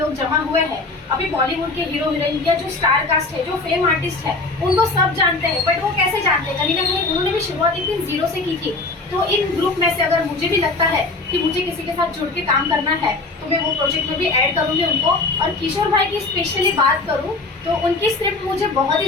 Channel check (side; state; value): right; quieter; 3.4 dB